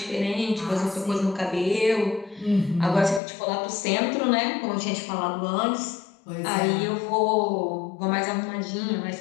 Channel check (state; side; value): drops out; right; at 3.2 s